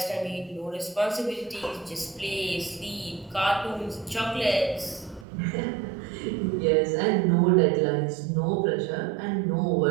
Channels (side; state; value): left; drops out; at 5.2 s